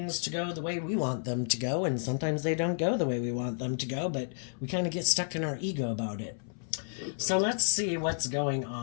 to go the way we want them to go. And sometimes they don't go the way we want them to go, but we kind of get stuck in our ego about it. So let's see what's going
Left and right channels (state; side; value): silent; right; 57 dB below the other